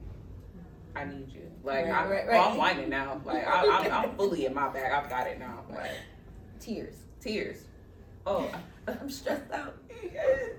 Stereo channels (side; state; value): both; identical; correlation 1.00